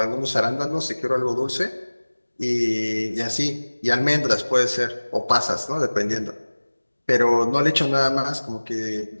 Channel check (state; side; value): inverted; both; correlation -1.00